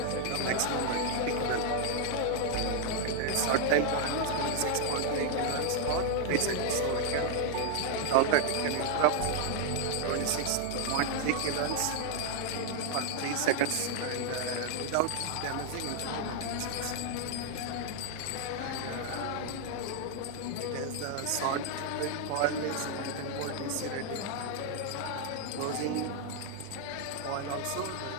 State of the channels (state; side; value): different; both; correlation 0.00